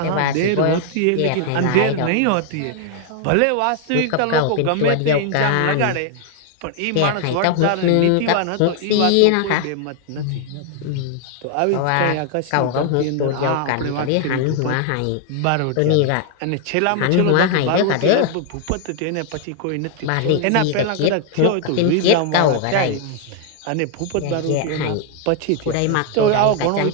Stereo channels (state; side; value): different; both; correlation 0.00